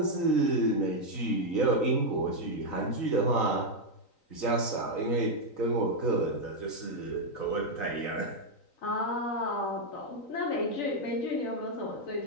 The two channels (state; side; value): late; right; 3.9 ms